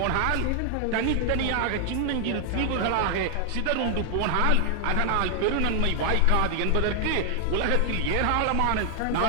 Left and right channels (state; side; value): different; both; correlation 0.00